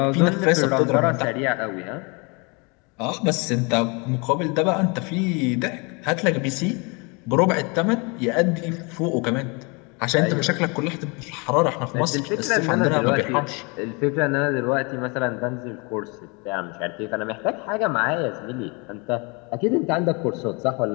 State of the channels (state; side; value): quieter; right; 30.5 dB